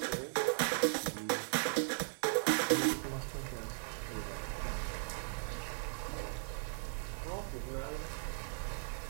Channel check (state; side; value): silent; left; 52 dB below the other